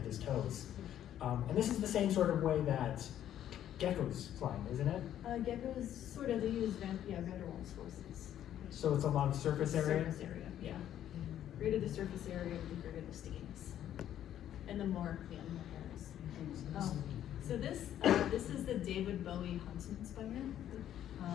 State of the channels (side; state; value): right; quieter; 11.1 dB